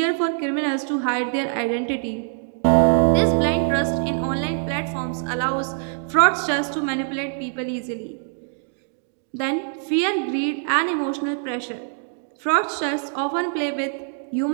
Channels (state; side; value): silent; left; 63 dB below the other